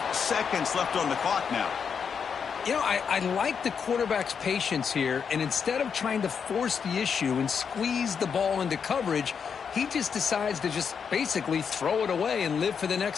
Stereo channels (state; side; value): quieter; right; 6.6 dB